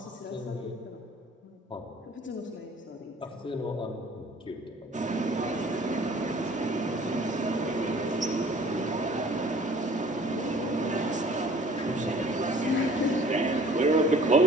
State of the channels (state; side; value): normal; both; correlation 0.52